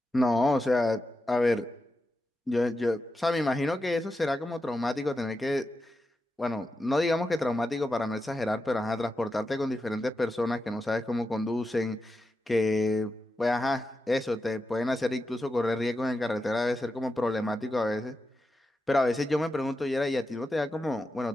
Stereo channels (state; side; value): normal; both; correlation 0.89